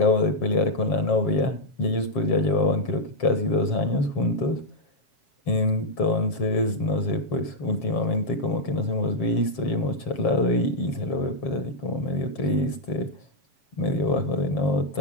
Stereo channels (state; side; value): late; right; 7.3 ms